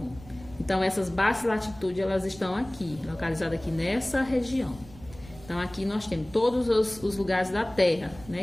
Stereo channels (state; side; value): noise; right; rumble, 20 dB below the sound